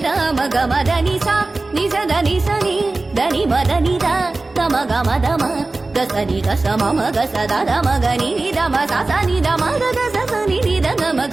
ಮಗ ಮದನಿ ಸಾ ನಿಜದ ನಿಸನಿ దని మదని ద తమ గమ దమ గసని గస మమ గస దద మగని దమ ససని దమ గగ ససని ద గమ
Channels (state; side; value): quieter; left; 3.3 dB